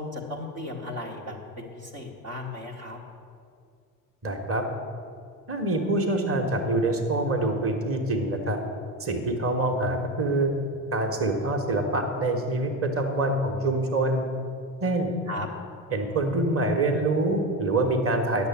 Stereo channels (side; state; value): both; normal; correlation 0.19